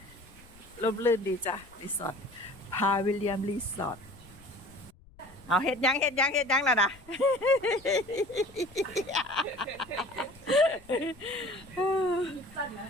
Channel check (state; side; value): noise; left; rumble, 24 dB below the sound